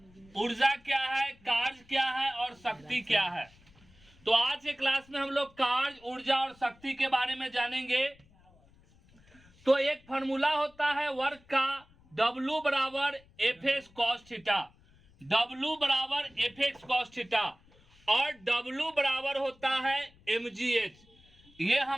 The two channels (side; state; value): left; noise; rumble, 28 dB below the sound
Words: ऊर्जा क्या है, कार्य क्या है और शक्ति क्या है। तो आज के क्लास में हम लोग कार्य, ऊर्जा और शक्ति के बारे में जानेंगे। तो एक फॉर्मूला होता है वर्क का, W बराबर F x cos theta, W बराबर एफ एक्स कॉस थीटा और W बराबर होता है mgh। ये